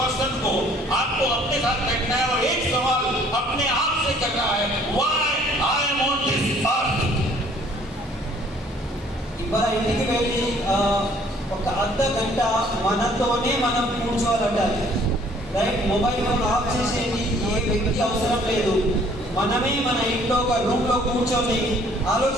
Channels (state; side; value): normal; both; correlation 0.58